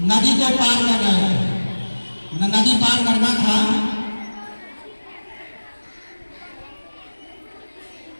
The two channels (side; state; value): both; inverted; correlation -1.00